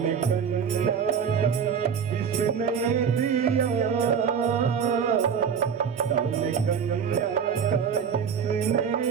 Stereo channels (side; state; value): left; quieter; 7.0 dB